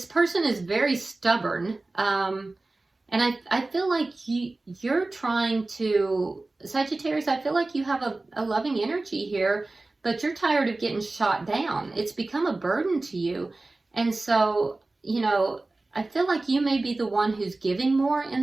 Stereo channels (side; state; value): left; quieter; 3.1 dB